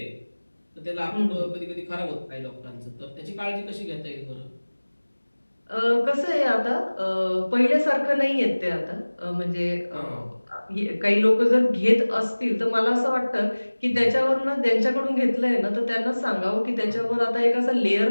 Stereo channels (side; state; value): both; inverted; correlation -1.00